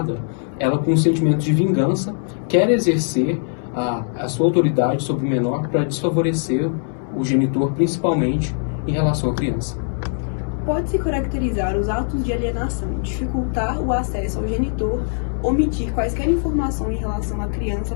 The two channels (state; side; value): silent; right; 64 dB below the other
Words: ela com um sentimento de vingança quer exercer a sua autoridade sobre o menor para desfavorecer o genitor, principalmente em relação à criança. Pode-se caracterizar os atos de alienação, dificultar o acesso ao genitor, omitir quaisquer informações em relação à criança